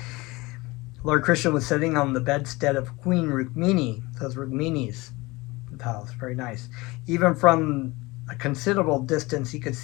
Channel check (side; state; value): right; quieter; 22.4 dB